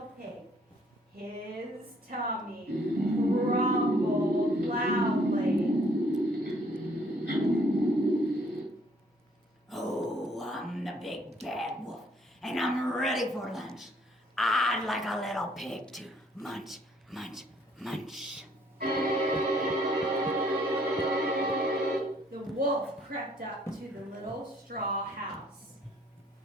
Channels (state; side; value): normal; both; correlation 0.63